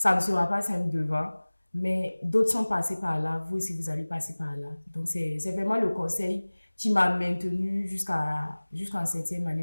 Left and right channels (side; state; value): both; inverted; correlation -1.00